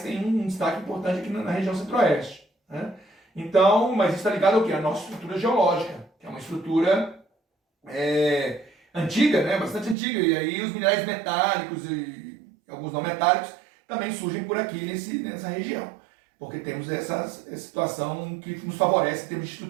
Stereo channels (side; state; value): left; drops out; at 10.0 s